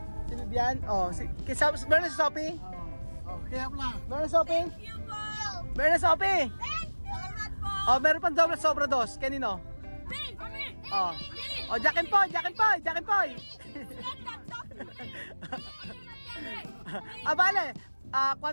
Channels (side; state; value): both; inverted; correlation -1.00